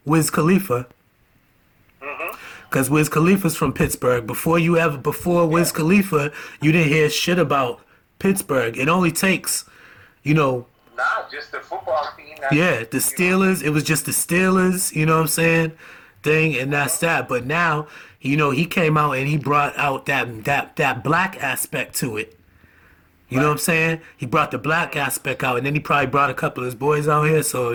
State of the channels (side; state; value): both; identical; correlation 1.00